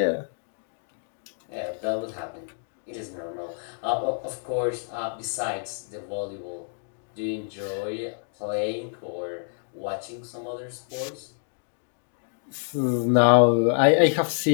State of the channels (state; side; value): silent; right; digital silence